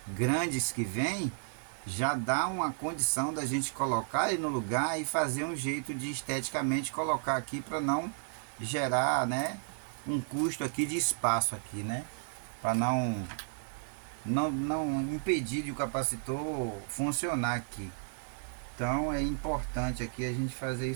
grandes que vem, já dá uma condição da gente colocar ele no lugar e fazer um jeito de esteticamente colocar aqui para não gerar, né, um custo aqui de espaço aqui, né, para não impedir de o capacitor funcionar aqui. Então é importante aqui a gente fazer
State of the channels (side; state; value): left; silent; 56 dB below the other